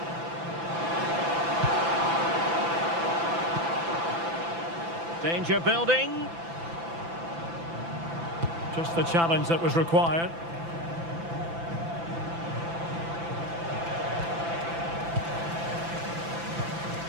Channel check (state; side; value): late; left; 5.9 ms